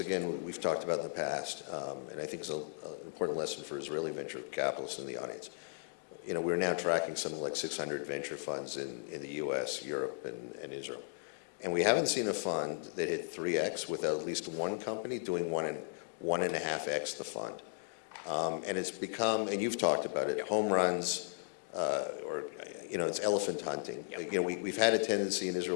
again, we've talked about in the past, and I think is an important lesson for Israeli venture capitalists in the audience. We're now tracking something like 600 venture funds in the U.S., Europe, and Israel. And we haven't seen a fund that hit 3x without at least one company doing 1.5x the fund. And it's become, and you've talked about it, home runs, or it's elephant hunting. Yep. We've had a tendency in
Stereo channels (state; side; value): silent; right; digital silence